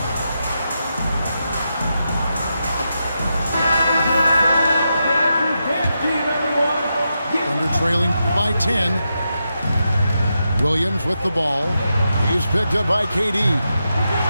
Thunder trailing by 10. Williams with the ball. He's picked up by KD.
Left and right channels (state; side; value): inverted; both; correlation -0.86